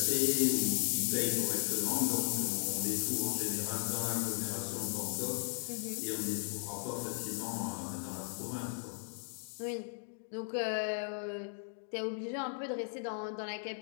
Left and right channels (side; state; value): right; silent; digital silence